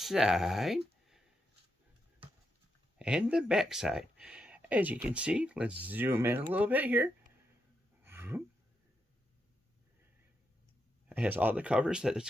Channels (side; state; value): both; normal; correlation 0.83